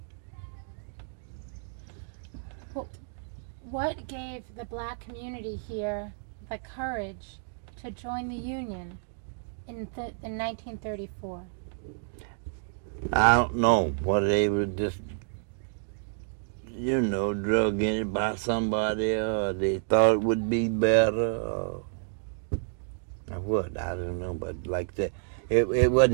What gave the black community here the courage to join the union in 1934? I don't know what they were just, drug in it by somebody, or they thought it would be better, or what, I don't know, but like that, there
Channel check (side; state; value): left; silent; digital silence